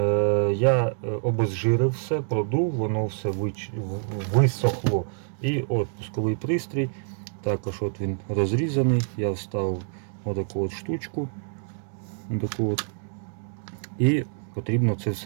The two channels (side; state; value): left; silent; digital silence